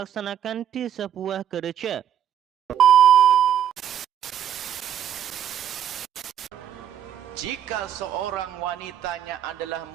di sebuah gereja. Jika seorang wanitanya adalah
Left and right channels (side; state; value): left; quieter; 9.8 dB